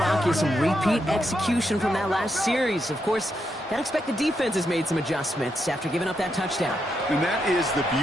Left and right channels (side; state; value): both; normal; correlation 0.82